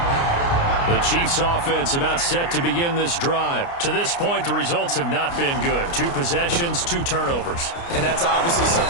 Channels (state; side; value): late; right; 29 ms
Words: The Chiefs offense about set to begin this drive. To this point, the results have not been good. 2 possessions, 2 turnovers. And that's obviously